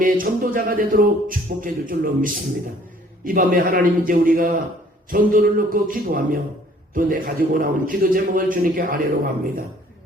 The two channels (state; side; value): normal; both; correlation 0.57